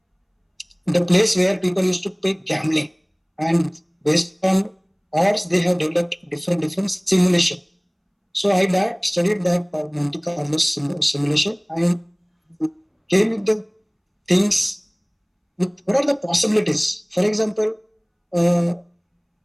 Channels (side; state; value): both; identical; correlation 1.00